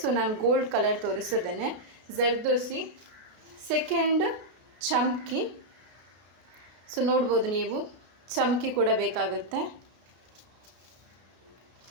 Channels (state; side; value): late; left; 33 ms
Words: ನಾನು ಗೋಲ್ಡ್ ಕಲರ್ ತೋರಿಸಿದ್ದೇನೆ. ಜರ್ದೋಸಿ. ಸೆಕೆಂಡ್ ಚಮ್ಕಿ. ಸೊ ನೋಡ್ಬೋದು ನೀವು, ಚಮ್ಕಿ ಕೂಡ ಬೇಕಾಗುತ್ತೆ.